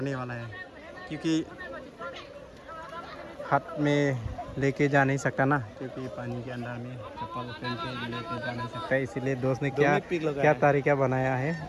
वाला है, क्योंकि हाथ में लेके जा नहीं सकता ना, क्योंकि पानी के अंदर में चप्पल पहन के लेके जा नहीं सकता, इसीलिए दोस्त ने क्या तरीका बनाया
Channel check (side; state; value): both; identical; correlation 1.00